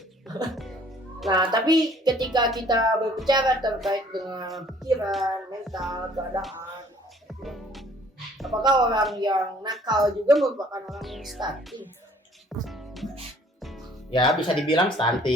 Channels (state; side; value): normal; both; correlation 0.57